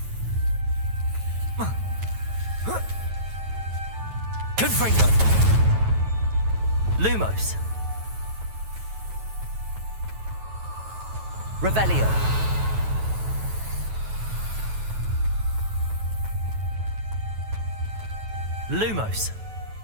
Confringo. Lumos. Revelio. Lumos.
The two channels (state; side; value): late; left; 9.2 ms